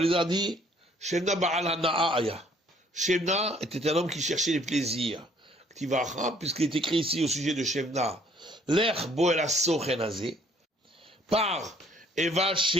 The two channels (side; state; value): both; normal; correlation 0.61